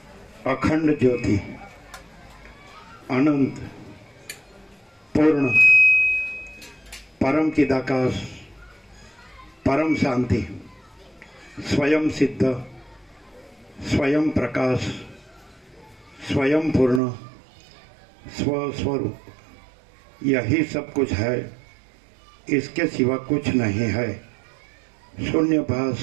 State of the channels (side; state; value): left; drops out; at 17.0 s